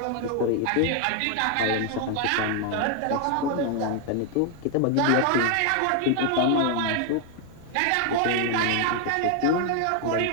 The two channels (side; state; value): both; different; correlation 0.00